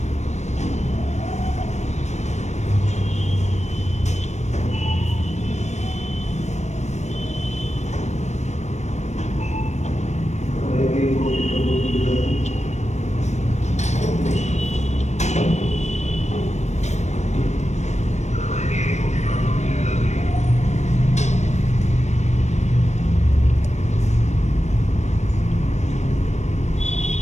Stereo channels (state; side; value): late; right; 0.33 ms